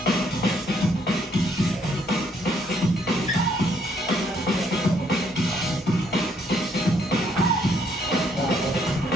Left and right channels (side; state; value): both; normal; correlation 0.69